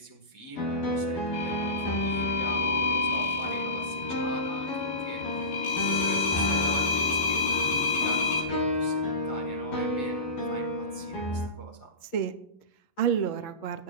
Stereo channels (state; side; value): late; right; 11 ms